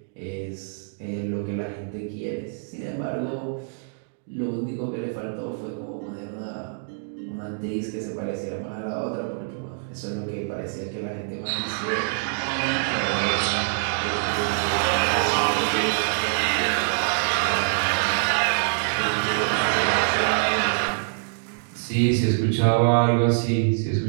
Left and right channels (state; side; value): silent; left; digital silence